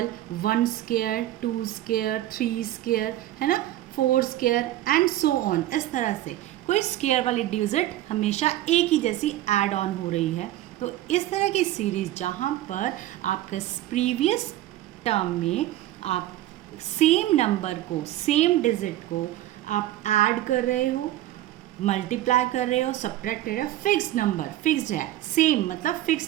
1 square, 2 square, 3 square, है ना, 4 स्क्वायर एंड सो ऑन। इस तरह से कोई स्क्वायर वाली डिजिट हमेशा एक ही जैसी ऐड ऑन हो रही है। तो इस तरह की सीरीज़ जहाँ पर आपका प्रीवियस टर्म में आप सेम नंबर को, सेम डिजिट को आप ऐड कर रहे हो, मल्टीप्लाई कर रहे हो, सब्ट्रैक्ट कर रहे हो, फिक्स नंबर, फिक्स्ड है, सेम मतलब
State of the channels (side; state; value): left; quieter; 14.5 dB